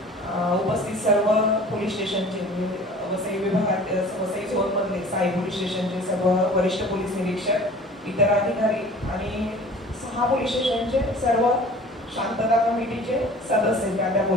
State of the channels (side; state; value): both; normal; correlation 0.45